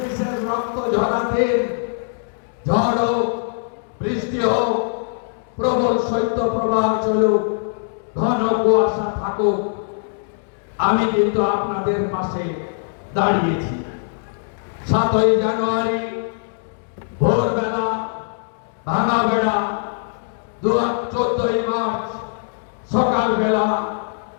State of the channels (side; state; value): right; silent; digital silence